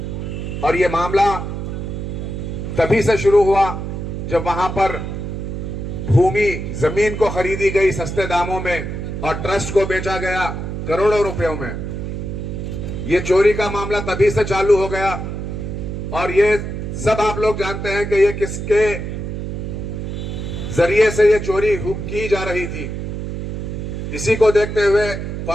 और ये मामला तभी से शुरू हुआ जब वहां पर भूमि जमीन को खरीदी गई सस्ते दामों में और ट्रस्ट को बेचा गया करोड़ों रुपयों में। ये चोरी का मामला तभी से चालू हो गया और ये सब आप लोग जानते हैं कि ये किसके जरिए से ये चोरी की जा रही थी। इसी को देखते हुए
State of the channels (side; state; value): right; noise; hum, 5 dB below the sound